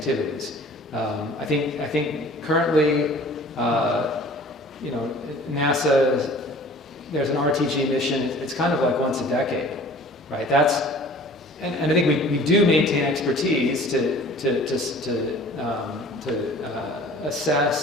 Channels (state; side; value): normal; both; correlation 0.47